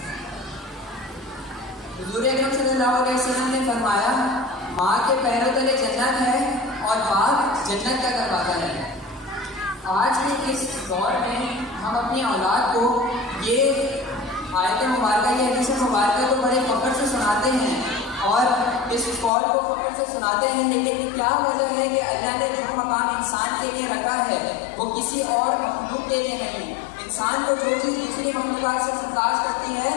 حضور اکرم صلی اللہ علیہ وسلم نے فرمایا, ماں کے پیروں تلے جنت ہے اور باپ جنت کا دروازہ ہے. آج کے اس دور میں ہم اپنی اولاد کو یہ آیت مبارکہ, یہ حدیث مبارکہ کو بڑے فخر سے سناتے ہیں اور اس قول کو فخر سے سناتے ہیں, لیکن کیا وجہ ہے کہ اللہ نے جو مقام انسان کے لیے رکھا ہے وہ کسی اور مخلوق کے لیے نہیں. انسان کو جو چیز دوسری مخلوقات سے ممتاز کرتی ہے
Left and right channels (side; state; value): right; drops out; at 19.3 s